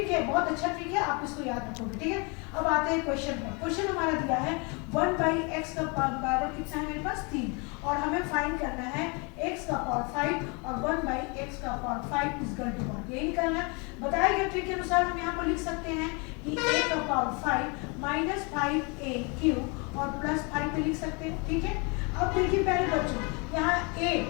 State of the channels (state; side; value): quieter; right; 31.5 dB